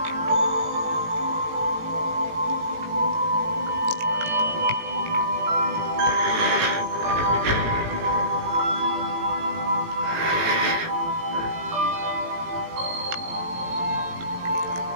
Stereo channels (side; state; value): left; late; 17 ms